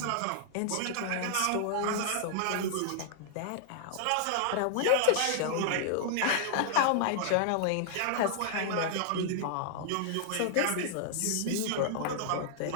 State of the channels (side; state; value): both; different; correlation -0.01